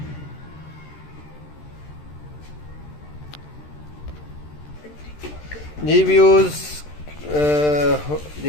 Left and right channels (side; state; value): right; late; 13 ms